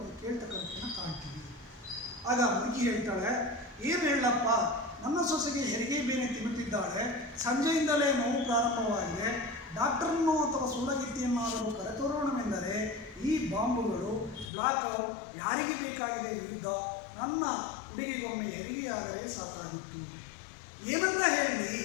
ಕೇಳ್ತಕ್ಕಂಥದ್ದನ್ನು ಕಾಣ್ತೀವಿ. ಆಗ ಮುದುಕಿ ಹೇಳ್ತಾಳೆ, ಏನು ಹೇಳಪ್ಪ, ನನ್ನ ಸೊಸೆಗೆ ಹೆರಿಗೆ ಬೇನೆ ತಿನ್ನುತ್ತಿದ್ದಾಳೆ, ಸಂಜೆಯಿಂದಲೇ ನೋವು ಪ್ರಾರಂಭವಾಗಿದೆ, ಡಾಕ್ಟರನ್ನು ಅಥವಾ ಸೂಲಗಿತ್ತಿಯನ್ನಾದರೂ ಕರೆತರೋಣವೆಂದರೆ ಈ ಬಾಂಬುಗಳು, ಬ್ಲಾಕ್ಔಟ್, ಯಾರಿಗೆ ಬೇಕಾಗಿದೆ ಯುದ್ಧ, ನನ್ನ ಹುಡುಗಿಗೊಮ್ಮೆ ಹೆರಿಗೆಯಾದರೆ ಸಾಕಾಗಿತ್ತು. ಏನಂತ ಹೇಳಿ,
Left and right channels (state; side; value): drops out; right; at 14.5 s